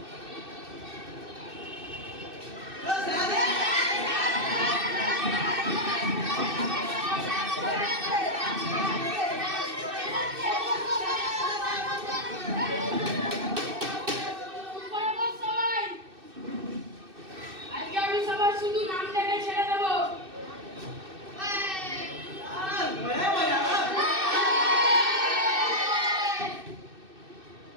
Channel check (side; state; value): left; late; 2.6 ms